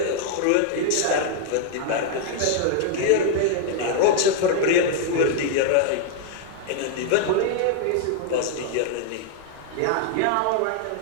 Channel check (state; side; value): different; both; correlation 0.00